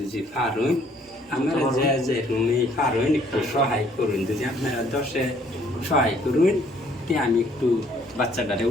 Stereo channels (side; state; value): both; normal; correlation 0.62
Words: পারুন আমরা যে রুমে পারুন একটু সহায় করুন, যদি আপনারা 10-এ সহায় করুন তে আমি একটু বাচ্চাটারে